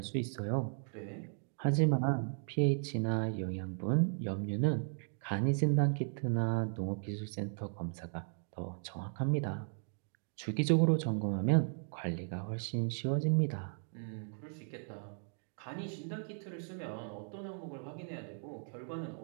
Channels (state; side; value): silent; left; 54 dB below the other